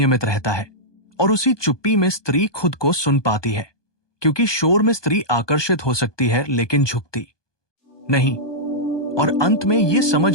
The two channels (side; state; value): right; late; 1.2 ms